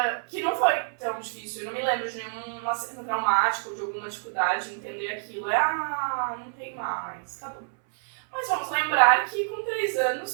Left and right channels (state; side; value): silent; left; 60 dB below the other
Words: que não foi tão difícil. Eu não me lembro de nenhum acidente traumático, de alguma dificuldade em entender aquilo. Não tem mais, tá bom. Mas vamos lembrar que com 3